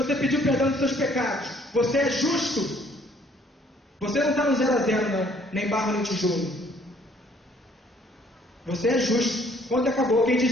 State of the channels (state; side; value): normal; both; correlation 0.61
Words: pediu perdão dos seus pecados, você é justo. Você não está no 0-0 não, nem barro nem tijolo. Você é justo. Quando acabou, quem